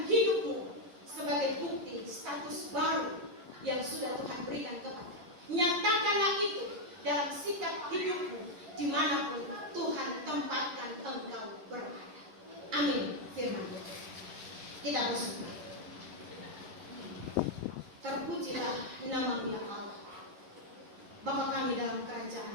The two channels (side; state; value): left; late; 11 ms